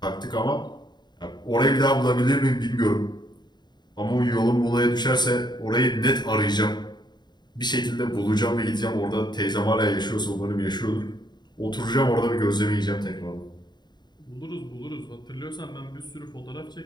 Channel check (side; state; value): right; late; 0.21 ms